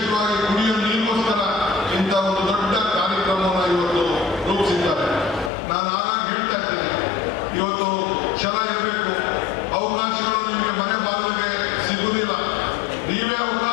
ಕುಡಿಯುವ ನೀರಿಗೋಸ್ಕರ ಇಂಥ ಒಂದು ದೊಡ್ಡ ಕಾರ್ಯಕ್ರಮವನ್ನು ಇವತ್ತು ರೂಪಿಸಿದ್ದಾರೆ. ನಾನು ಆಗಾಗ ಹೇಳ್ತಾ ಇದ್ದೇನೆ, ಇವತ್ತು ಛಲ ಇರಬೇಕು. ಅವಕಾಶಗಳು ನಿಮಗೆ ಮನೆ ಬಾಗಿಲಿಗೆ ಸಿಗುವುದಿಲ್ಲ. ನೀವೇ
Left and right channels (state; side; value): drops out; right; at 5.5 s